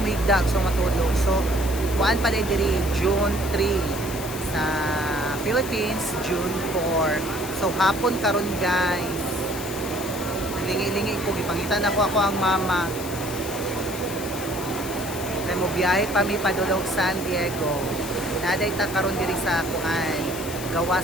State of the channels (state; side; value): noise; left; hiss, 11 dB below the sound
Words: so matulog. So kuan pa diri June 3 sa Philippines, June 4. So hapon karon guys. Lingi-lingi ko gipangitan ako ang mama. Kay mo biyahe pa mi padulog San Diego. Naday ta karon diri sa kuan gawa